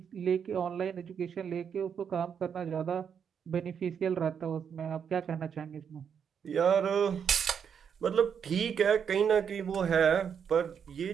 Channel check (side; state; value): left; quieter; 7.4 dB